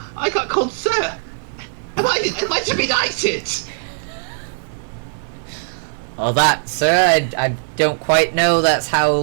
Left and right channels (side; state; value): left; silent; 66 dB below the other